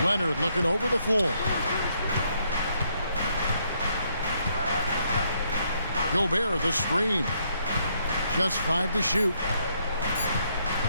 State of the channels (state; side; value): inverted; both; correlation -0.73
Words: Leonard looking over the floor. Gobert the screen. Just 5 to shoot.